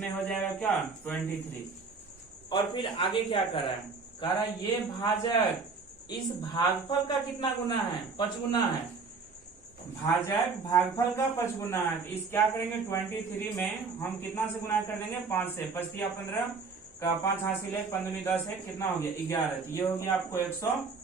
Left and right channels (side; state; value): left; quieter; 4.6 dB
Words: हो जाएगा क्या 23। और फिर आगे क्या कर रहा है, कह रहा है ये भाजक इस भागफल का कितना गुना है, 5 गुना है। भाजक भागफल का 5 गुना है, तो इस क्या करेंगे 23 में हम कितना से गुना कर देंगे 5 से, 5 या 15 का 5 हासिल है, 15 10 है, कितना हो गया 11, तो ये हो गया आपको